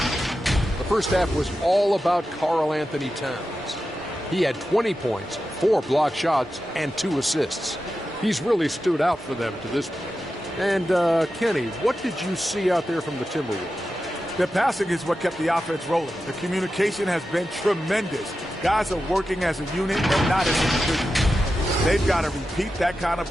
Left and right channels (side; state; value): both; normal; correlation 0.91